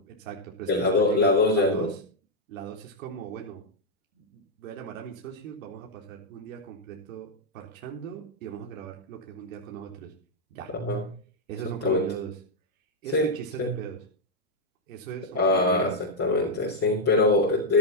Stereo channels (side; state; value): both; normal; correlation -0.03